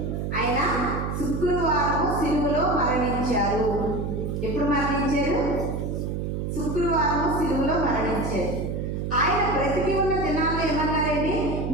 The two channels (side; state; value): right; noise; hum, 3 dB below the sound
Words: ఆయన శుక్రవారం సిలువలో మరణించారు. ఎప్పుడు మరణించారు? శుక్రవారం సిలువలో మరణించారు. ఆయన బ్రతికి ఉన్న దినాల్లో ఏమన్నారండి?